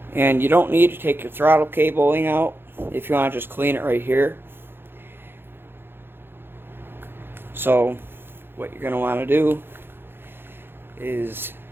And you don't need to take your throttle cabling out if you want to just clean it right here. So what you're going to want to do is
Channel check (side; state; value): left; late; 0.10 ms